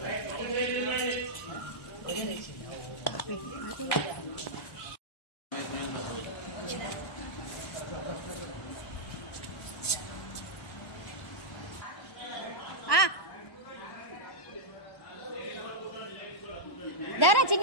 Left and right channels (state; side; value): late; right; 1.1 ms